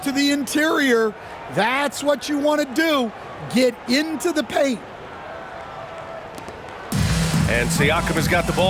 the interior. That's what you want to do. Get into the paint. And Siakam has got the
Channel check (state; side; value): identical; both; correlation 1.00